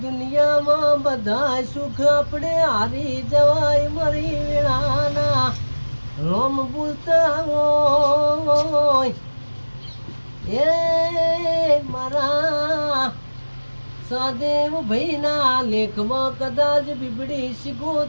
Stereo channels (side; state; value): both; inverted; correlation -1.00